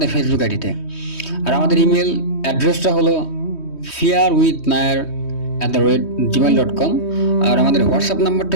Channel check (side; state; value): right; late; 3.2 ms